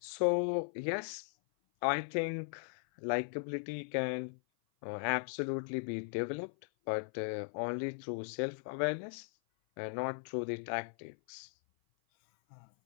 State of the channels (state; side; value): silent; right; 52 dB below the other